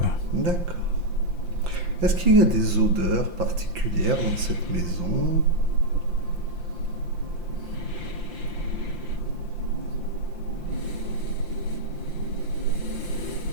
D'accord. Est-ce qu'il y a des odeurs particulières dans cette maison?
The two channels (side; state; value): left; late; 5.7 ms